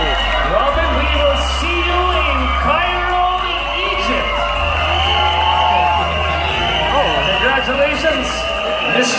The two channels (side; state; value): both; identical; correlation 1.00